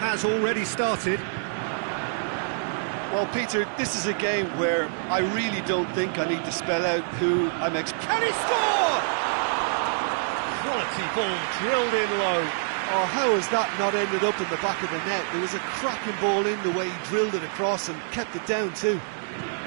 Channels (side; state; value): left; silent; digital silence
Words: already started. Well, Peter, this is a game where I really don't think I need to spell out who I'm Can he score? Quality ball drilled in low. Oh, how has that not ended up in the back of the net? There was a cracking ball in the way he drilled it across and kept it down too.